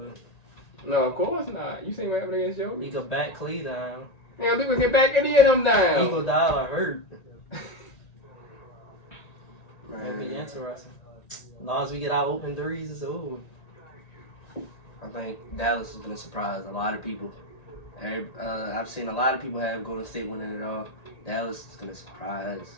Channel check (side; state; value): right; late; 1.9 ms